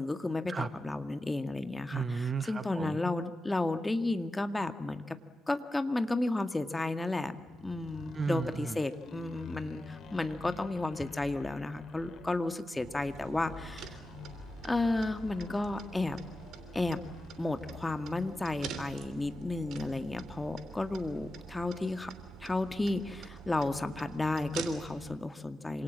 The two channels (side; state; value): both; normal; correlation 0.92